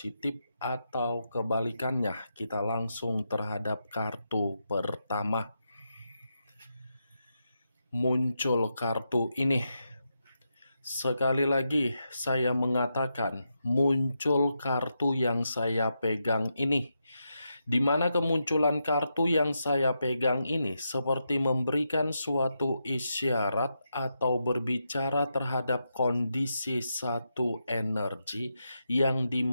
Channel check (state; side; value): inverted; both; correlation -0.85